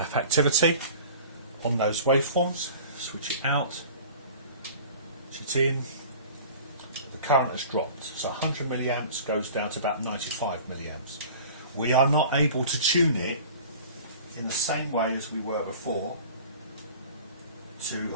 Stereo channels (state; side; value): inverted; both; correlation -0.42